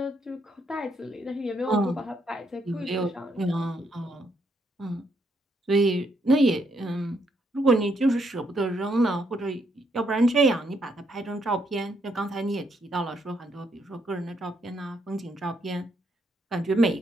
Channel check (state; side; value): normal; both; correlation 0.75